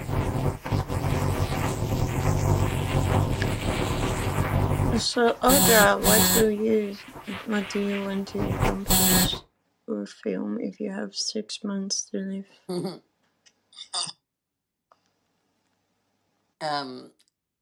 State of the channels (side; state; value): both; identical; correlation 1.00